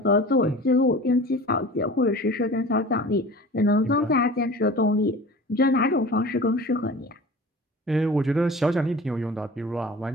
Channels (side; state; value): both; normal; correlation 0.39